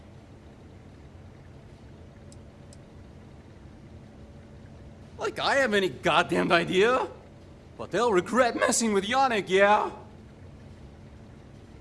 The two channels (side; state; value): both; identical; correlation 1.00